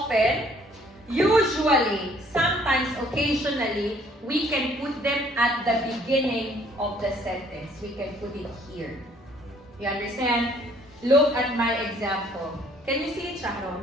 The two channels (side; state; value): both; normal; correlation 0.61